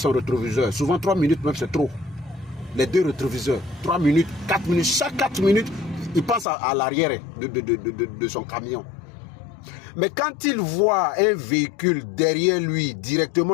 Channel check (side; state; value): right; drops out; at 6.5 s